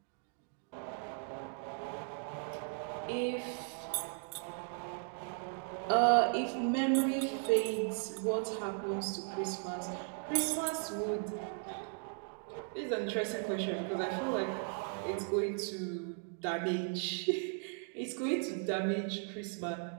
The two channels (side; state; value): left; silent; 53 dB below the other